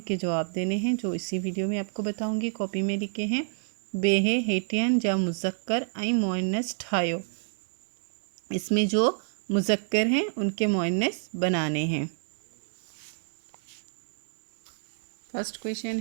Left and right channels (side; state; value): left; silent; 59 dB below the other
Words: जवाब देने हैं जो इसी वीडियो में आपको बताऊंगी। कॉपी में लिखे हैं, बेहे हेटियन जा मुज़क्कर ऐं मुअन्नस ठायो। इसमें जो मुज़क्कर हैं उनके मुअन्नस बनाने हैं। फर्स्ट क्वेश्चन